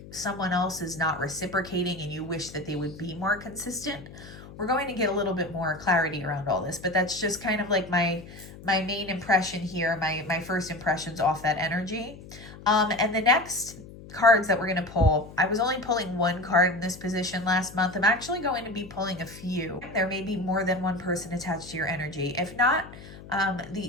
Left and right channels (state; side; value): noise; left; hum, 17 dB below the sound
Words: someone else is not reciprocating and you wish that they would be more consistent. We're going to get a little bit more clarity around all this, but that's just kind of like my main impression here, my first impressions off that energy. And the next cards that we're going to pull, I was only pulling one card in this position last month. I'm actually going to be pulling a few. There may be more than one person attached to your energy. If not,